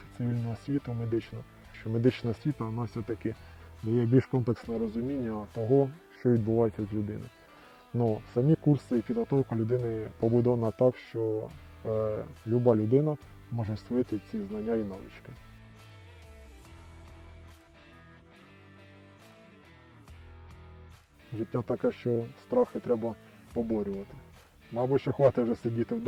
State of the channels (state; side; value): identical; both; correlation 1.00